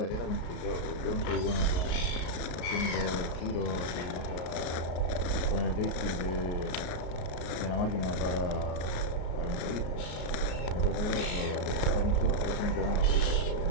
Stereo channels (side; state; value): right; late; 33 ms